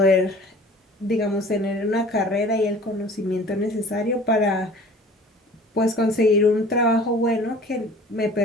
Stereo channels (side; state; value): both; normal; correlation 0.46